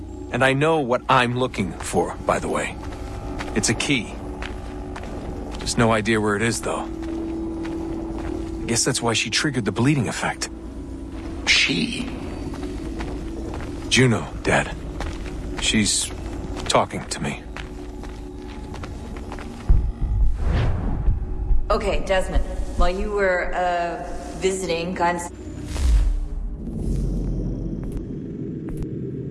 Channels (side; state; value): both; identical; correlation 1.00